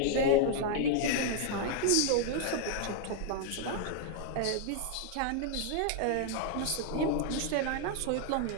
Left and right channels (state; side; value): different; both; correlation -0.01